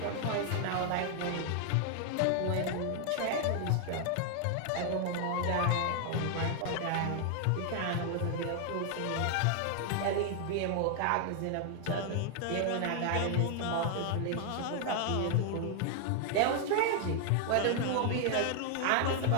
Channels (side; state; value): both; different; correlation 0.00